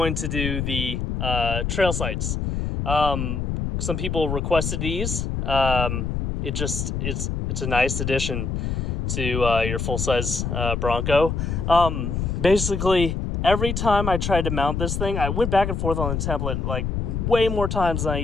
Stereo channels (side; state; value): left; noise; rumble, 2 dB below the sound